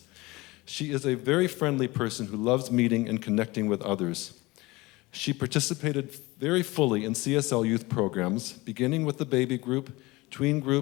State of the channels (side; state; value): right; quieter; 21.7 dB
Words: She is a very friendly person who loves meeting and connecting with others. She participated very fully in CSL youth programs, beginning with the baby group, tween